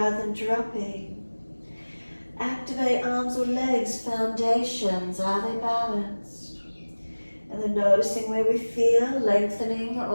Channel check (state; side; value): inverted; both; correlation -1.00